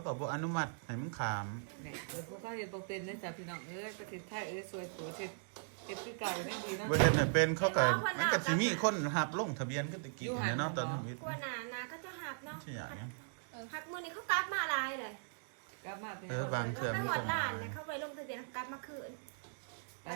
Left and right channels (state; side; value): silent; left; digital silence